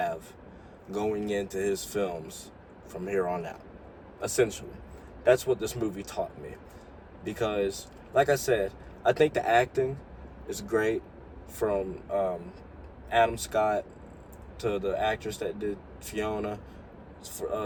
going into his films from here on out. Essentially, that's what this movie taught me. Because, like I said, I think the acting is great from Adam Scott to the actress that did Fiona.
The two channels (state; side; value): identical; both; correlation 1.00